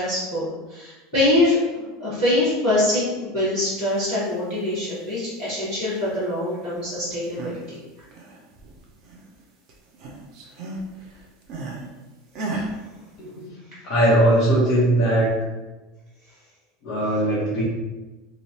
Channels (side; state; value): both; normal; correlation 0.36